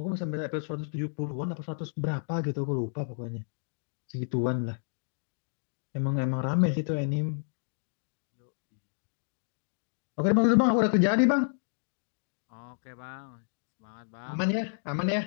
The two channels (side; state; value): right; silent; digital silence